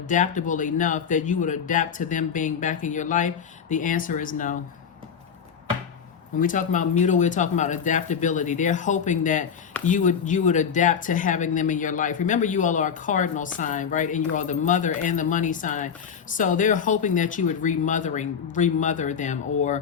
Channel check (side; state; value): right; quieter; 7.1 dB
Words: enough that you would adapt to them being back in your life. The answer is no. When we talk about mutable, we're talking about adaptability. They're hoping that you would adapt to having them in your life. Remember, you all are a cardinal sign, right? And you are the mother and the money sign. So they're hoping that you would remother them